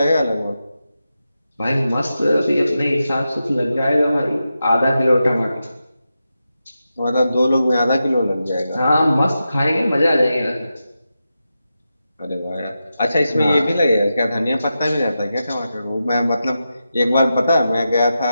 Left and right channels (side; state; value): both; inverted; correlation -0.89